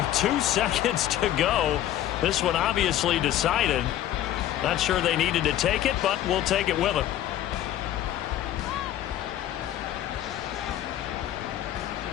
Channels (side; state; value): right; quieter; 12.5 dB